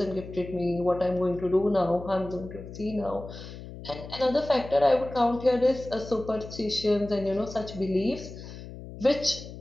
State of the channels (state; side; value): noise; left; hum, 13 dB below the sound